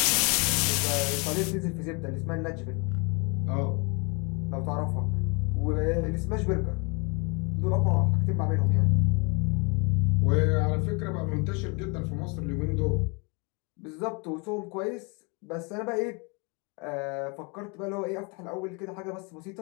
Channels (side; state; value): right; quieter; 31.6 dB